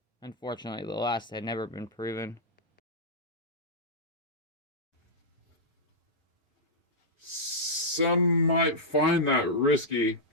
Unfortunately, the last had never been proven. Some might find that risky,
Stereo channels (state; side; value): normal; both; correlation -0.09